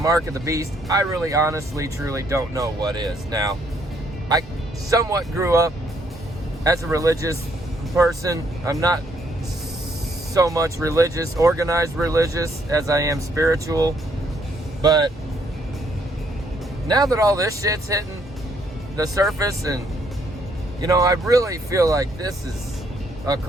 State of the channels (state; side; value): normal; both; correlation 0.70